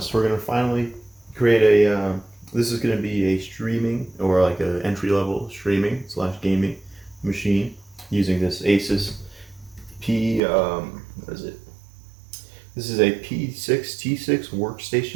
we're gonna finally create a. This is gonna be a streaming or like an entry level streaming / gaming machine using this Asus P. What is it? This is a P6T6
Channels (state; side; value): drops out; left; at 10.4 s